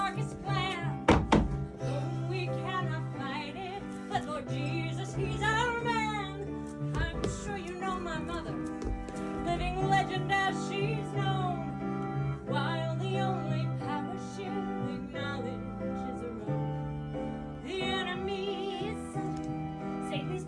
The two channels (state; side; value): identical; both; correlation 1.00